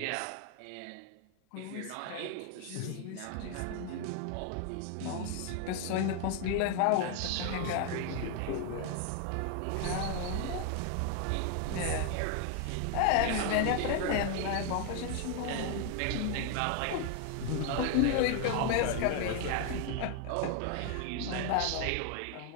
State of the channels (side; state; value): both; different; correlation 0.00